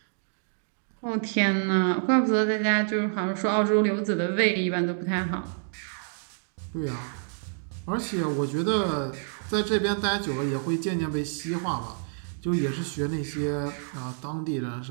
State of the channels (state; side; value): silent; left; digital silence